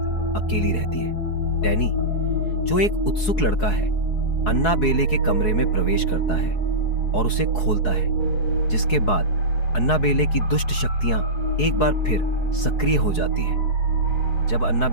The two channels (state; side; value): late; right; 4.7 ms